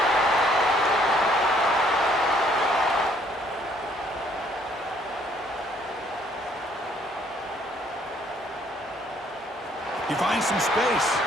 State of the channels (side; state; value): both; normal; correlation 0.64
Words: He finds some space.